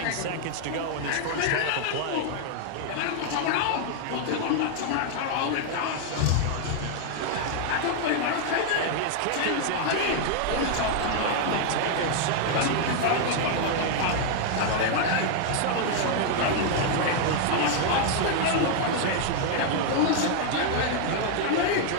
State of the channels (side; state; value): both; different; correlation 0.00